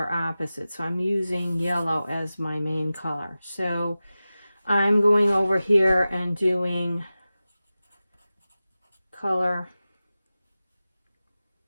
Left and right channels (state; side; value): inverted; both; correlation -0.95